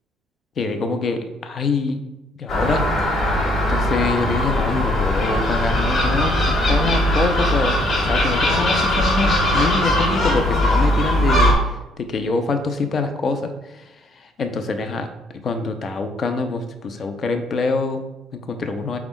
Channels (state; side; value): normal; both; correlation 0.66